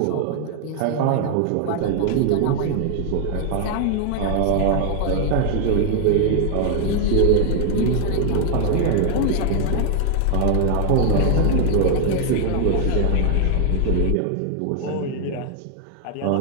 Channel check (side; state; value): both; different; correlation 0.00